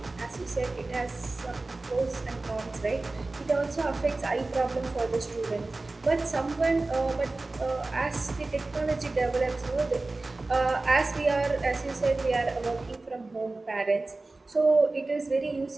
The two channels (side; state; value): left; quieter; 3.2 dB